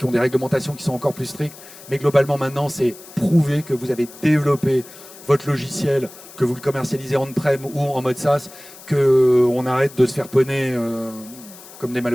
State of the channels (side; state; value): left; noise; hiss, 19 dB below the sound